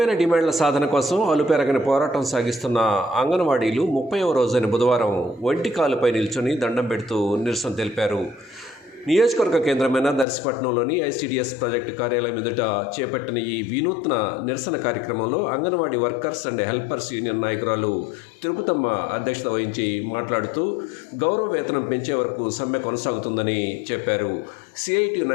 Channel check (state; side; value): drops out; right; at 10.2 s